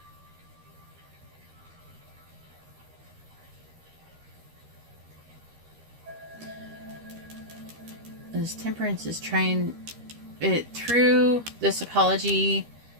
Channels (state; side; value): late; left; 13 ms